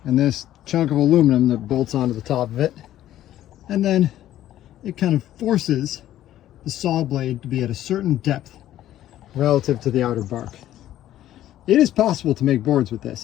and this chunk of aluminum that bolts onto the top of it. And then it kind of forces the saw blade to be at a certain depth relative to the outer bark. It is possible to make boards with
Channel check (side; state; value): right; quieter; 12.8 dB